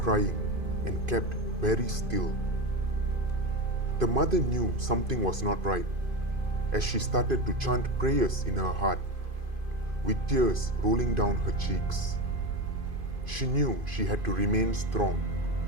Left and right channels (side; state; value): left; late; 2.5 ms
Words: and kept very still. The mother knew something was not right as she started to chant prayers in her heart, with tears rolling down her cheeks. She knew she had to remain strong